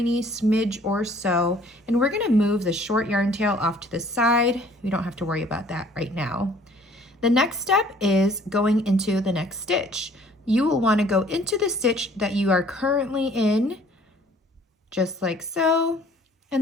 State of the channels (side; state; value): both; normal; correlation 0.55